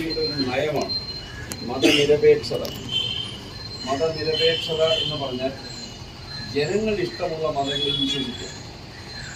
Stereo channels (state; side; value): identical; both; correlation 1.00